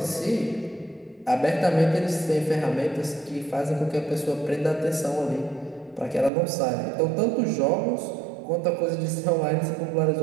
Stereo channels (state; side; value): drops out; left; at 6.3 s